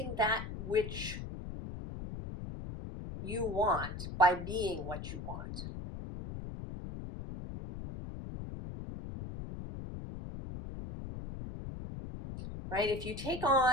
that which you want by being what you want. Right? If you take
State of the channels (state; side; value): noise; left; rumble, 8 dB below the sound